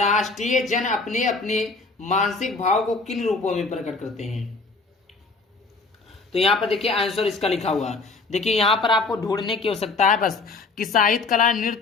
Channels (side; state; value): right; quieter; 3.9 dB